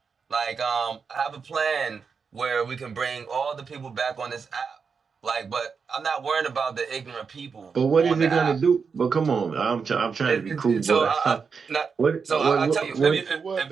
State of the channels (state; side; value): quieter; left; 5.6 dB